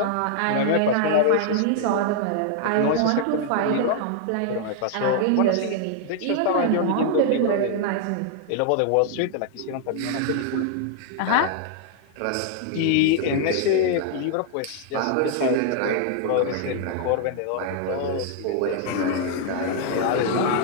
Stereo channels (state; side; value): different; both; correlation 0.00